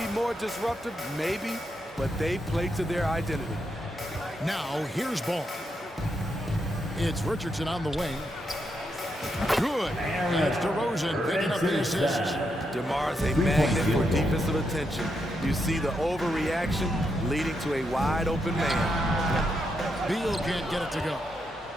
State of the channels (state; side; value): normal; both; correlation 0.82